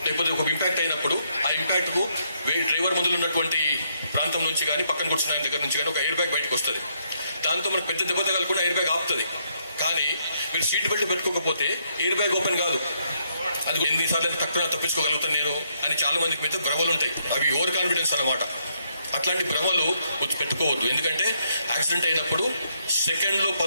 లేకపోతే ఒక ఇంపాక్ట్ అయినప్పుడు, ఆ ఇంపాక్ట్ కు డ్రైవర్ ముందు ఉన్నటువంటి ప్రాంతం నుంచి కానీ, పక్కన కూర్చున్న ఆయన దగ్గర నుంచి కానీ ఒక ఎయిర్ బ్యాగ్ బయటకు వస్తుంది. దాంతో మనకు పెద్ద దెబ్బ తగలకుండా ఎయిర్ బ్యాగ్ ఆపుతుంది. కానీ మీరు సీట్ బెల్ట్ పెట్టుకోకపోతే ఎయిర్ బ్యాగ్ ఓపెన్ కాదు. అది ఎన్నిసార్లు తక్కువ తప్పించుకోగలుగుతాను నేను అని చాలా మందికి మీద భ్రమలు ఉంటాయి. అవి ఓవర్ కాన్ఫిడెన్స్ అన్నమాట. అట్లాంటి భ్రమలు పెట్టుకోవద్దు. ఎందుకంటే యాక్సిడెంట్ అయినప్పుడు సెకండ్లో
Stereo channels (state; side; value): inverted; both; correlation -0.74